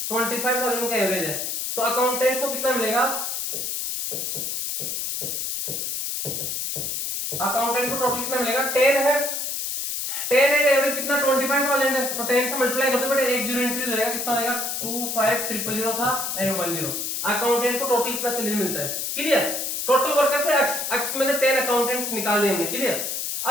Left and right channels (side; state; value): left; noise; hiss, 2 dB below the sound